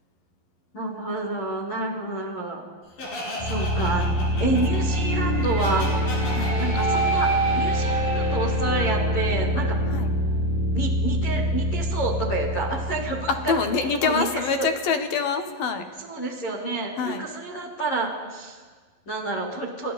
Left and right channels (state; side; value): late; right; 11 ms